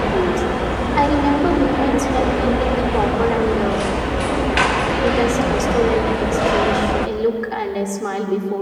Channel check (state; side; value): identical; both; correlation 1.00